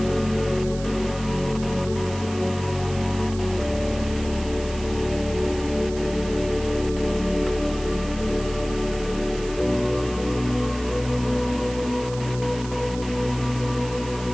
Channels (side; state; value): right; noise; hiss, 15 dB below the sound